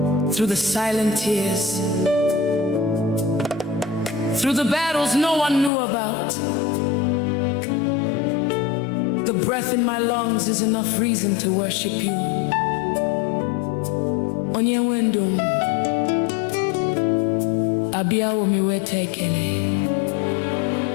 through the silent tears, through the battles no one knew about, the breath in my lungs is enough reason to worship you. Onye wendum, abia omi wetekele,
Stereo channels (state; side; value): drops out; right; at 5.7 s